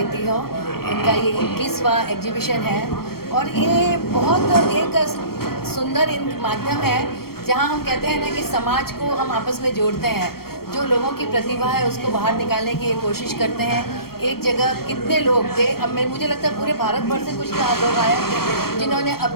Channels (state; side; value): late; right; 0.94 ms